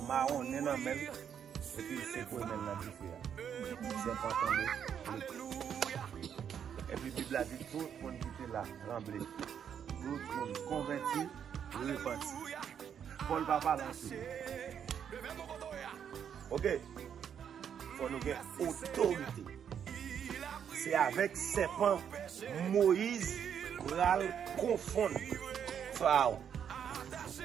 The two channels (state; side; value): quieter; left; 8.3 dB